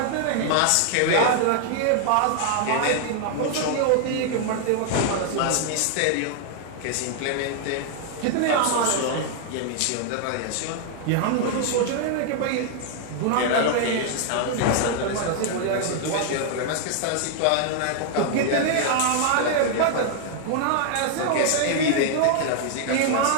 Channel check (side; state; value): both; different; correlation 0.00